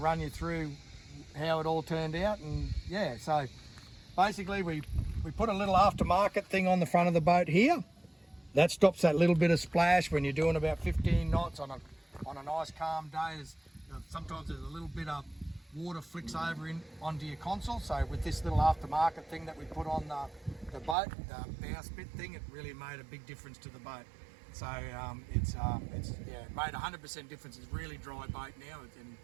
you through how it all turned out. And yeah, so basically we put a little aftermarket thing on the front of the boat here. That stops that little bit of splash when you're doing about 15 knots on a nice calm day. Sometimes there's a little bit of water flicks over onto your console. So with this little aftermarket thing that we put on the boat, the bowsprit thing, it really made a big difference to the boat. So it made 100% difference. It's a really dry boat now, and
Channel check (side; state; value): left; drops out; at 21.0 s